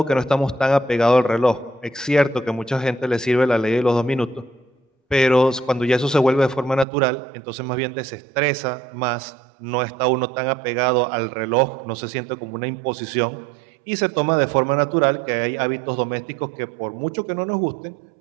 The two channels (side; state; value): left; drops out; at 6.9 s